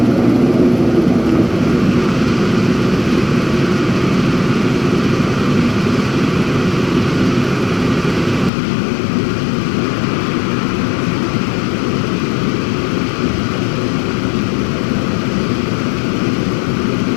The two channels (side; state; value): right; drops out; at 8.5 s